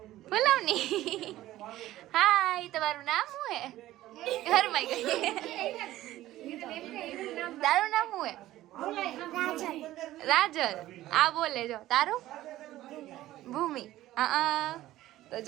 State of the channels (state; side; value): quieter; left; 15.1 dB